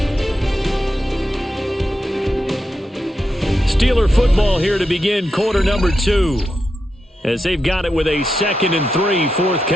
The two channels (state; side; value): normal; both; correlation 0.86